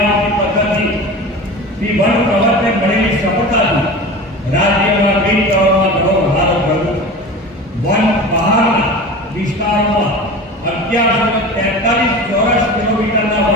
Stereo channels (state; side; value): normal; both; correlation 0.33